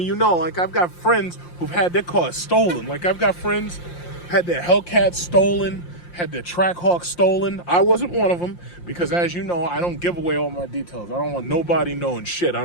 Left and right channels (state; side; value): late; right; 5.7 ms